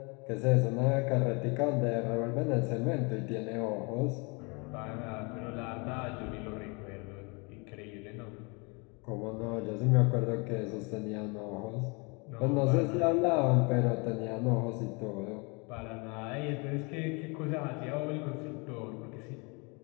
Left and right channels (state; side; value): quieter; right; 30.7 dB